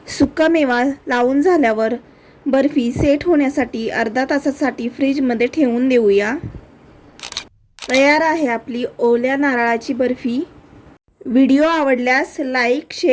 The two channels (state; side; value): identical; both; correlation 1.00